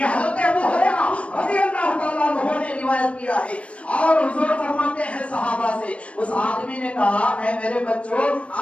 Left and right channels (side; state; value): right; late; 0.062 ms